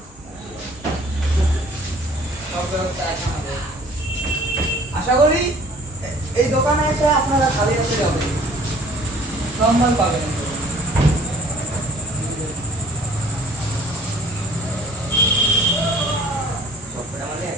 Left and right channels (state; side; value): normal; both; correlation 0.52